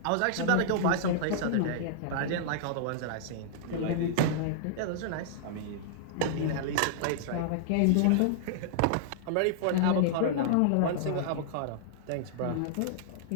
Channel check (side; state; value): both; different; correlation -0.01